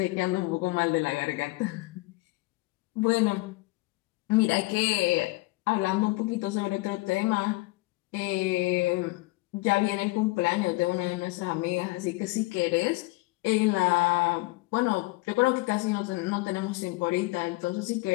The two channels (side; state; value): right; quieter; 22.0 dB